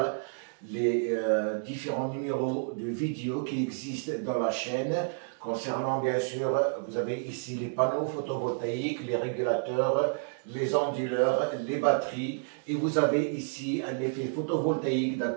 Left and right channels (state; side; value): silent; left; digital silence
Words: les différents numéros de vidéos qui existent dans la chaîne. Concernant, bien sûr, vous avez ici les panneaux photovoltaïques, les régulateurs, les onduleurs, les batteries. Et vous avez ici un effet photovoltaïque,